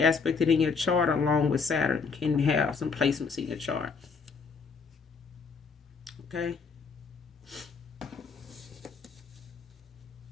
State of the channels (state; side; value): quieter; right; 5.1 dB